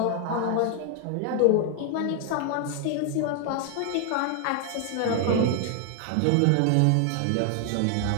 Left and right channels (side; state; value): both; different; correlation 0.00